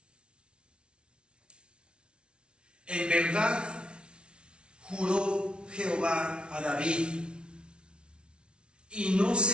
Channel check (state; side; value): late; left; 0.057 ms